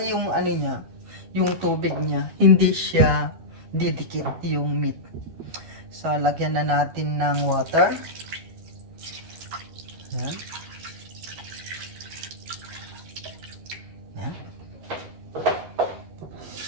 yung, niya, yung tubig niya, hindi siya didikit yung meat. So, lagyan na natin ng water. Ayan. Ayan.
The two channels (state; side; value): late; left; 12 ms